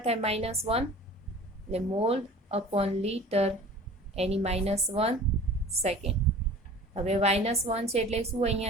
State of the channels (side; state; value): both; normal; correlation 0.43